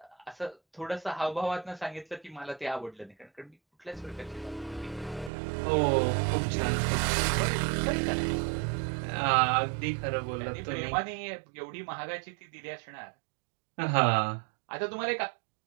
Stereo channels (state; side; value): drops out; left; at 5.3 s